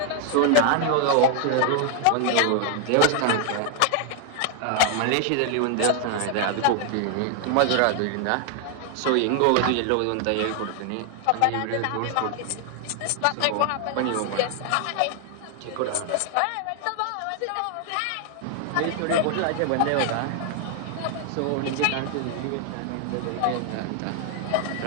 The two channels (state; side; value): different; both; correlation 0.00